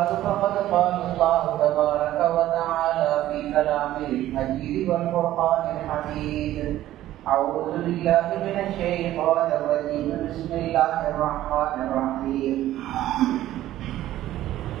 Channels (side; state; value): left; quieter; 13.9 dB